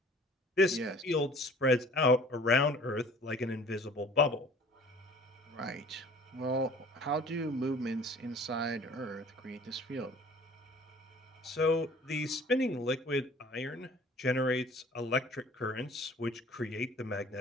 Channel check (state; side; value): normal; both; correlation 0.50